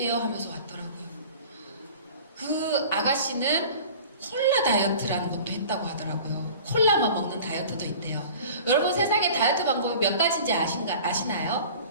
하면서 왔더라고요. 그 아가씨는 콜라 다이어트라는 것도 했다고 하더라고요. 콜라만 먹는 다이어트도 있대요. 여러분 세상에 다이어트 방법이 몇 가지인지 아시나요?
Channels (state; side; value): inverted; both; correlation -0.42